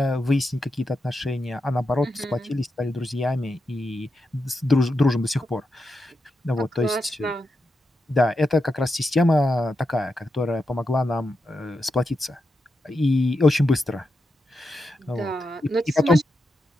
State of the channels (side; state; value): both; normal; correlation 0.87